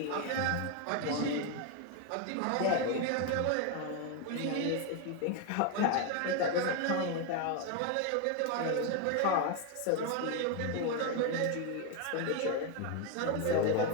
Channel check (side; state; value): both; different; correlation 0.01